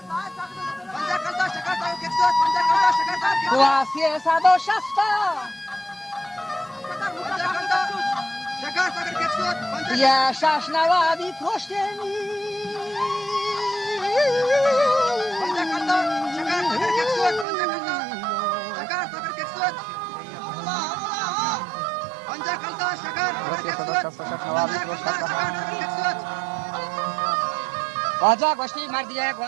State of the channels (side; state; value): left; drops out; at 17.4 s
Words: قواسی 160 یه شش نوادی پشتمی واجا گوشتی مردیه